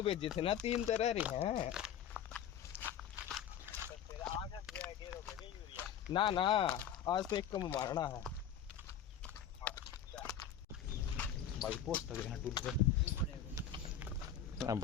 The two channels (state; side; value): quieter; right; 8.7 dB